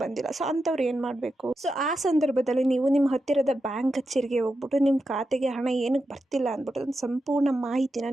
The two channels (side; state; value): both; normal; correlation 0.88